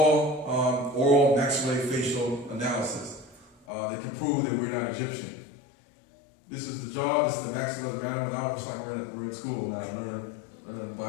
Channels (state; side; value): drops out; right; at 3.7 s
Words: oral maxillofacial analysis that can prove that we're not Egyptian. This is the jaw, this is the maxilla mandible. Now it's like we're in school now, learning